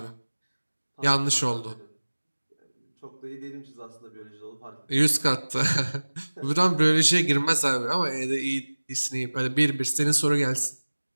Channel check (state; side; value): inverted; both; correlation -1.00